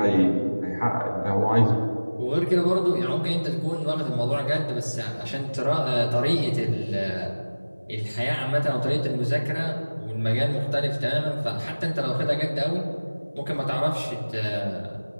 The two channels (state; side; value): inverted; both; correlation -1.00